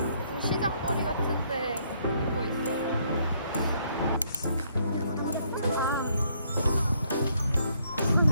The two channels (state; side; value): inverted; both; correlation -0.69